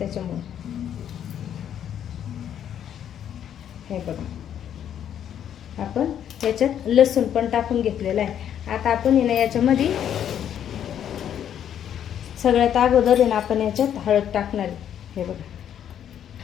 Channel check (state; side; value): quieter; right; 9.7 dB